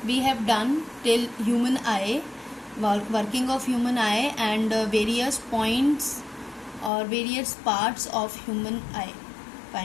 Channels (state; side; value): drops out; right; at 6.9 s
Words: We have done till human eye, working of human eye and various points or various parts of human eye.